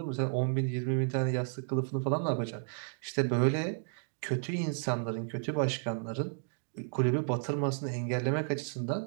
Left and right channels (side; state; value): left; silent; digital silence